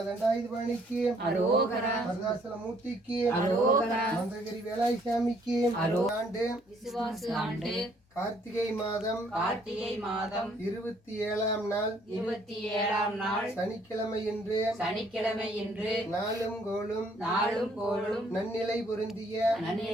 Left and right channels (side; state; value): both; normal; correlation 0.64